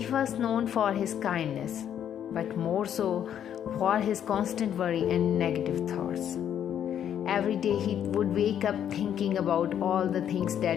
was known for his kindness, but more so for his constant worry and negative thoughts. Every day he would wake up thinking about all the things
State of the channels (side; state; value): right; quieter; 9.6 dB